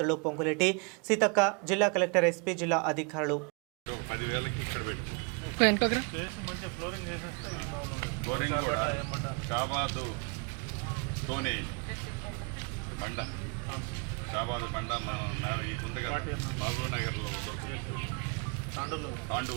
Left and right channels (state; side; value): quieter; left; 34.0 dB